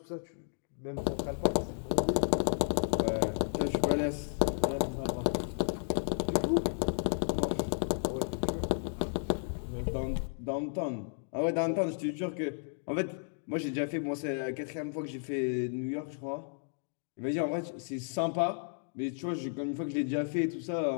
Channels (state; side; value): silent; right; digital silence